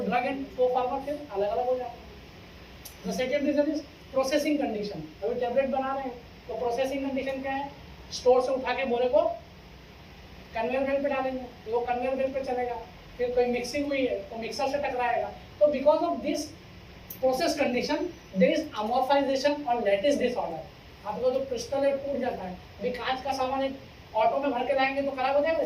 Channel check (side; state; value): both; identical; correlation 1.00